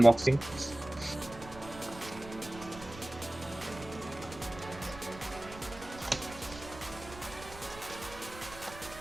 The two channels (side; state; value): right; noise; rumble, 15 dB below the sound